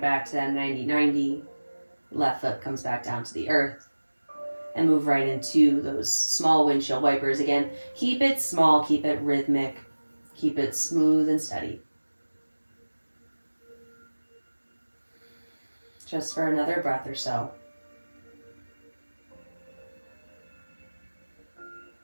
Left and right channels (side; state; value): both; inverted; correlation -1.00